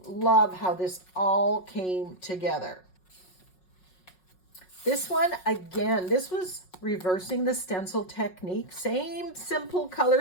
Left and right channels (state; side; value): late; right; 5.5 ms